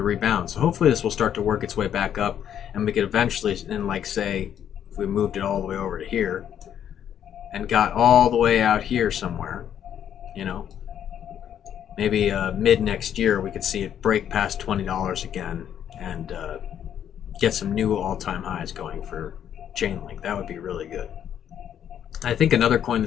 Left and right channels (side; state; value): right; quieter; 9.6 dB